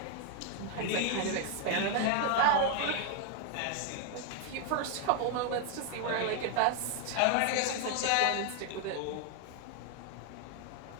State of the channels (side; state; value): both; different; correlation 0.00